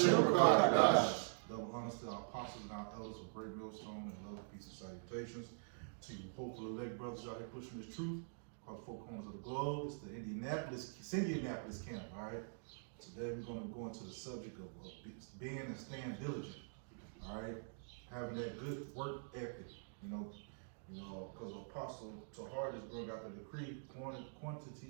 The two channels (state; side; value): silent; left; digital silence